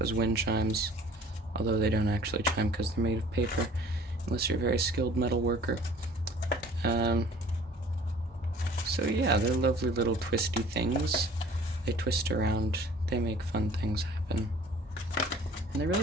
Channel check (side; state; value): both; normal; correlation 0.50